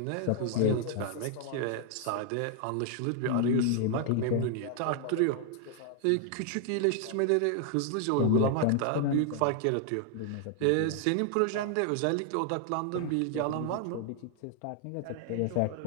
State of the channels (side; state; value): both; different; correlation 0.00